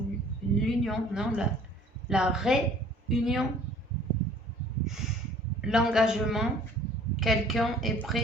L'union, non, la réunion. L'engagement. Quelqu'un est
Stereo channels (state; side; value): normal; both; correlation 0.53